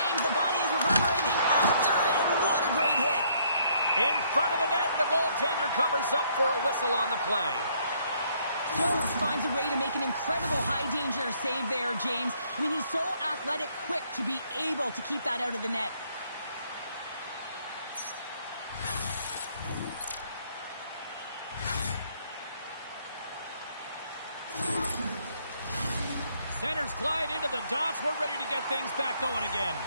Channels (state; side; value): inverted; both; correlation -0.67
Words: The body is reverberating after it. What a great hit. In front of the net, the goaltender covers up for a whistle on the play. Jones finds a way to make an incredible high-danger save there, James. I mean, he's so athletic, quick to be able to keep that out of the net. Centers glide into the dots. We're ready to get things back going again.